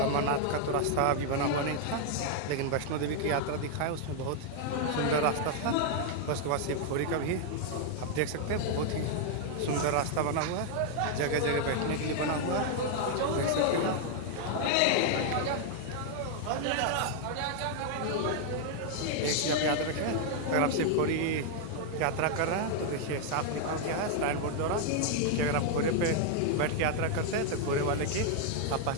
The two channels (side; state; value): both; different; correlation 0.00